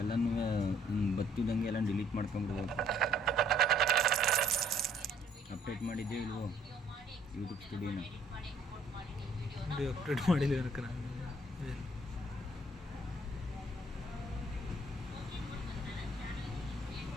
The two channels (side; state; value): both; normal; correlation 0.63